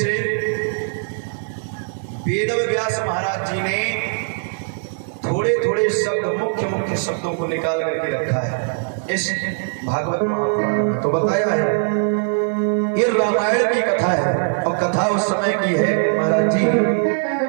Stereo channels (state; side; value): silent; left; 57 dB below the other